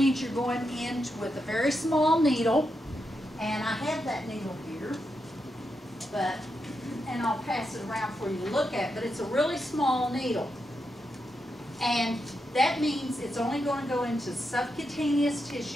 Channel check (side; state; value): both; normal; correlation 0.85